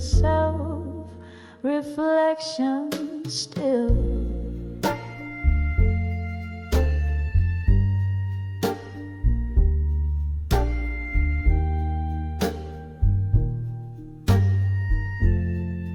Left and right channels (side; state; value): both; identical; correlation 1.00